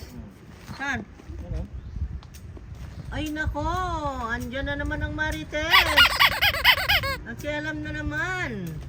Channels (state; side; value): identical; both; correlation 1.00